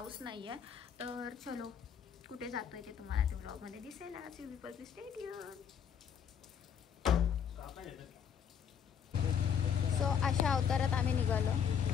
नाही आहे. तर चलो कुठे जातोय ते तुम्हाला त्या व्लॉगमध्ये दिसेल. आज यू स्टे ट्यून. सो अशा अवतारात आम्ही निघालो,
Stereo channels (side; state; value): right; quieter; 7.9 dB